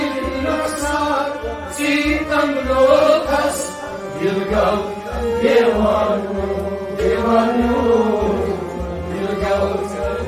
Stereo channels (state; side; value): identical; both; correlation 1.00